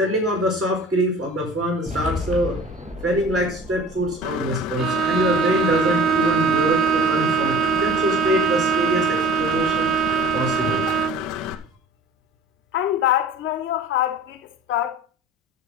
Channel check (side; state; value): both; normal; correlation 0.43